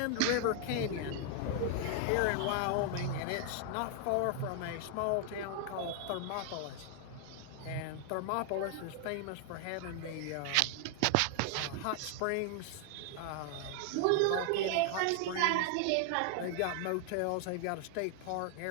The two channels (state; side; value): different; both; correlation 0.00